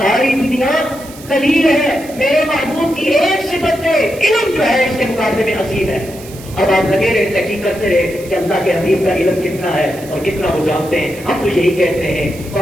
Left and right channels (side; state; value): right; noise; hiss, 18 dB below the sound